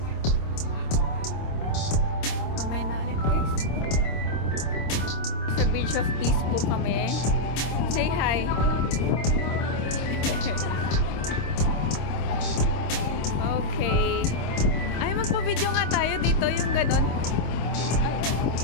Mamaya na ulit guys. Sa Bridge of Peace po kami. Say hi. Okay. Ay, magpa-video nga tayo dito, yung ganon.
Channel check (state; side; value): late; right; 26 ms